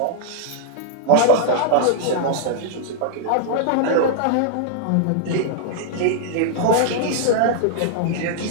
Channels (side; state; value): both; different; correlation -0.01